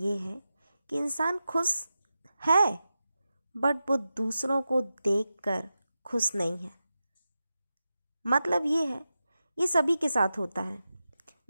है कि इंसान खुश है, बट वो दूसरों को देखकर खुश नहीं है। मतलब ये है, ये सभी के साथ होता है।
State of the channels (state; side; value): inverted; both; correlation -0.91